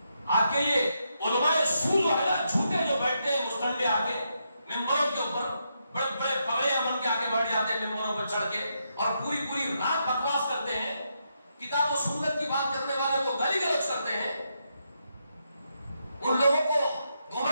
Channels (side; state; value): both; inverted; correlation -0.81